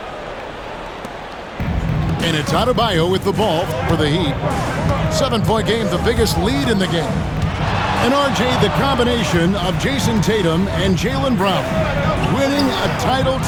And it's Adebayo with the ball for the Heat. 7-point game, the biggest lead in the game. And RJ, the combination of Jason Tatum and Jaylen Brown winning a title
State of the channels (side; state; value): both; identical; correlation 1.00